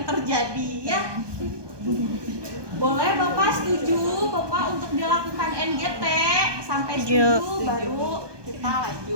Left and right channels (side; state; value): left; late; 1.2 ms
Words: terjadi ya. Boleh Bapak setuju Bapak untuk dilakukan NGT? Sampai setuju baru kita